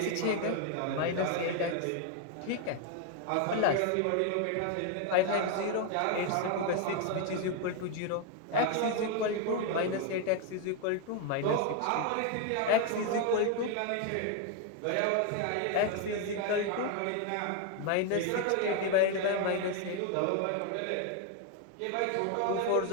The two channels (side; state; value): both; different; correlation 0.01